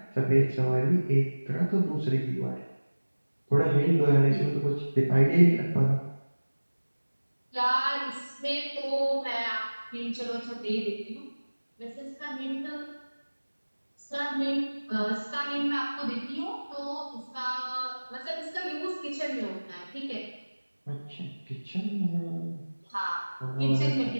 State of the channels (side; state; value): both; inverted; correlation -1.00